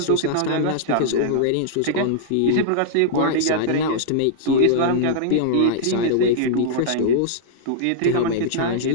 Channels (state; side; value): different; both; correlation -0.02